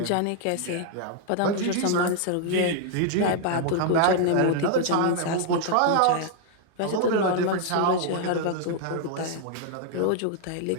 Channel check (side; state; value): both; different; correlation 0.00